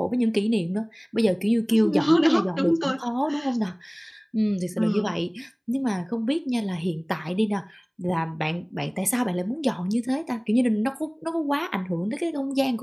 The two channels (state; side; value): identical; both; correlation 1.00